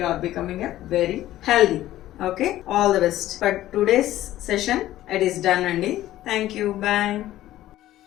are becoming a very healthy. Okay, all the best for today's session. It is done అండి. Thank you, bye.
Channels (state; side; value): quieter; right; 14.4 dB